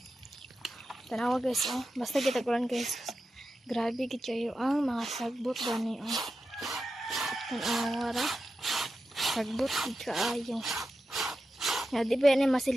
Tanawa guys, basta kita kulan guys. Grabe gid kayo ang mga sagbot gani Tanawa ra. Sagbot gid kaayo. Ya di ba ni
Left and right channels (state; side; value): normal; both; correlation 0.90